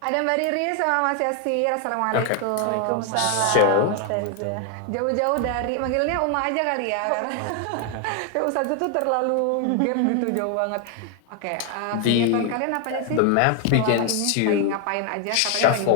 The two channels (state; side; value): different; both; correlation 0.01